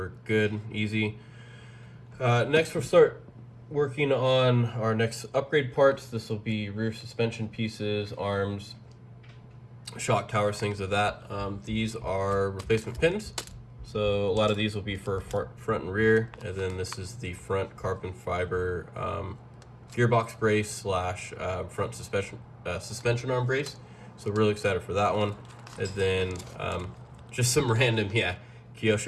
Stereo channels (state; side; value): identical; both; correlation 1.00